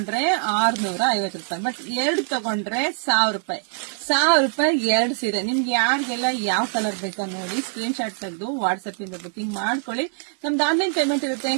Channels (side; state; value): left; silent; 63 dB below the other